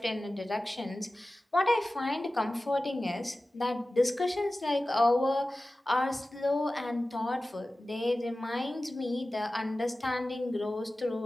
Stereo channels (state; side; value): normal; both; correlation 0.96